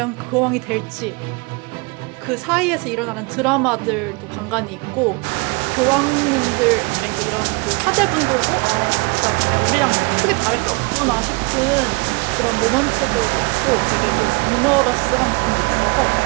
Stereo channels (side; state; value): left; quieter; 29.3 dB